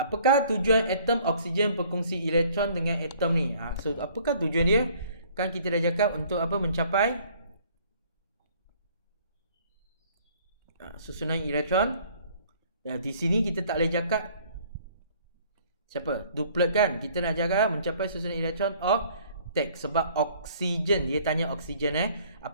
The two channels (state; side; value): inverted; both; correlation -0.57